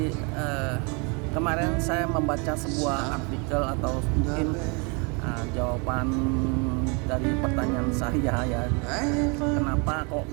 kemarin saya membaca sebuah artikel atau mungkin jawaban dari pertanyaan saya ya, kenapa kok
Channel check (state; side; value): quieter; left; 32.7 dB